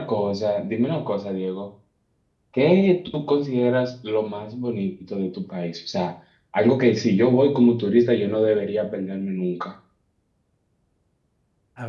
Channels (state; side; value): identical; both; correlation 1.00